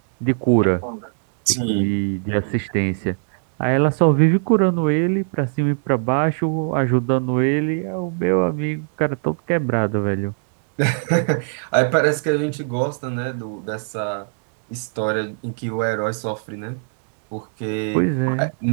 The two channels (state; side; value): silent; left; digital silence